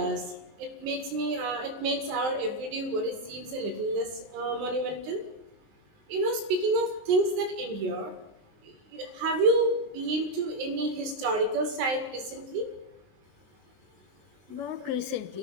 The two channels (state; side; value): late; left; 19 ms